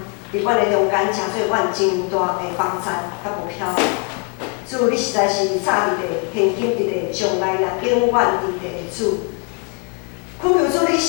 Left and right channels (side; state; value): right; quieter; 37.1 dB